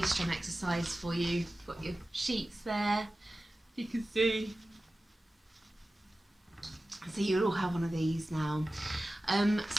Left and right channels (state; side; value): normal; both; correlation 0.95